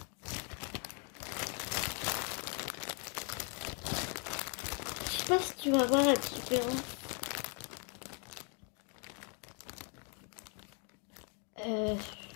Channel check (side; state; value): right; quieter; 38.1 dB